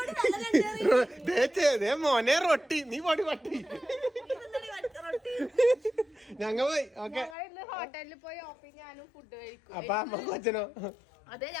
മോനെ റൊട്ടി. നീ പോടി പട്ടി. ഞങ്ങൾ പോയി. ഓക്കെ. ഹോട്ടലിൽ പോയി ഓപ്പി ഞാനും ഫുഡ് കഴിക്കും. അപ്പൊ അമ്മ കൊച്ചനോ? അതെ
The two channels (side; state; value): right; drops out; at 7.4 s